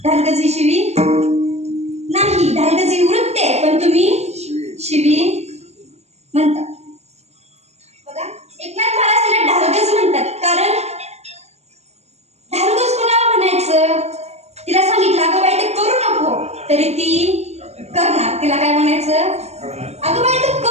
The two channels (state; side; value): late; left; 0.31 ms